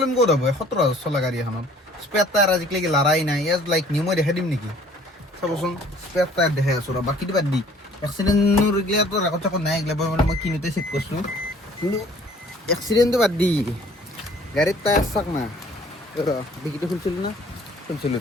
ক'ত হ'ব 17,000 চলা গাড়ী এখনত? স্পেয়াৰ টায়াৰ আজিকালি লৰাই নাই, এজ লাইক নিউ। মই দেখাই দিম নেকি, চাবচোন, স্পেয়াৰ টায়াৰ দেখাই আছোঁ ৰ। বাকীটো বাদ দি, এক্সিডেণ্টৰ এইগিলাটো ৰেকৰ্ড চেকৰ্ড নাই, এইগিলা মানে মই কিনোতে চেক কৰিছোঁ। কিন্তু এক্সিডেণ্টটো বাদ দি, গাড়ীৰ টায়াৰ চাক না, ডিকিটো খুলিছিলোঁ না,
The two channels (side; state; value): both; normal; correlation 0.55